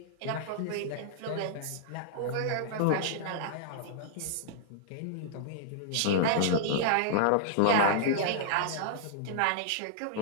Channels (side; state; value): both; different; correlation -0.01